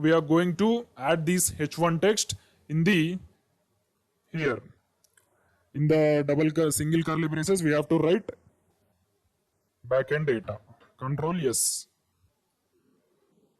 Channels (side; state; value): both; identical; correlation 1.00